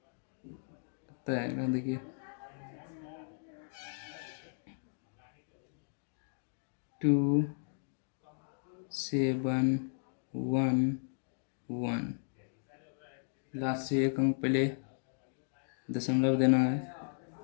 कितना आएगा? देखिए, 2711। लास्ट से एक अंक पहले दशमलव देना है।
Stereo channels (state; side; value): silent; right; digital silence